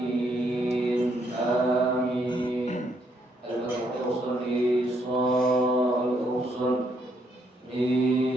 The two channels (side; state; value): both; normal; correlation 0.73